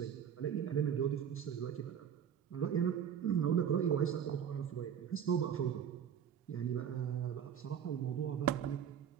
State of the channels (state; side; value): quieter; left; 8.7 dB